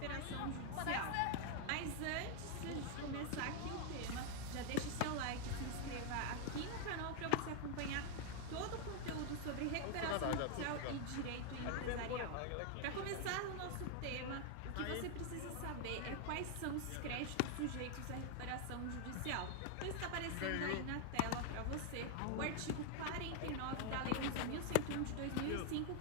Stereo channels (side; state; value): both; different; correlation 0.00